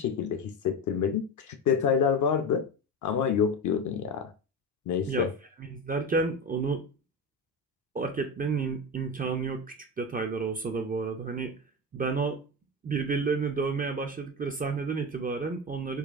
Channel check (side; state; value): both; normal; correlation 0.21